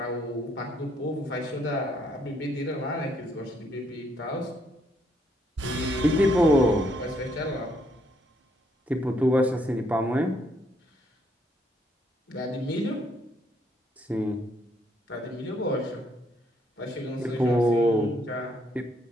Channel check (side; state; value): both; normal; correlation 0.71